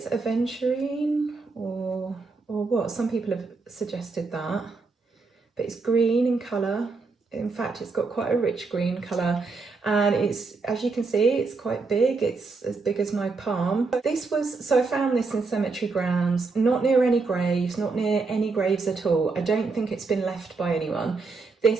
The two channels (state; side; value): quieter; left; 4.1 dB